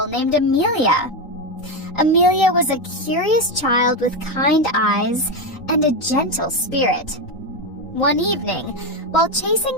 named Amelia. Amelia was a curious child with kind eyes and a gentle spirit. One evening, while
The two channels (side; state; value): right; late; 3.9 ms